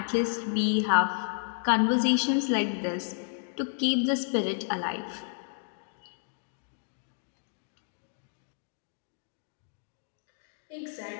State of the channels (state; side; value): silent; right; digital silence